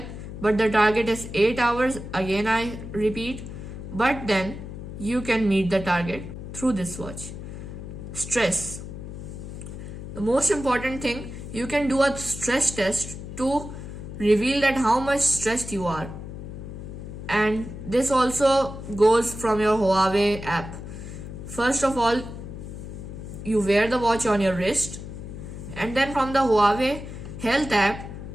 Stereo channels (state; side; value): noise; left; hum, 10 dB below the sound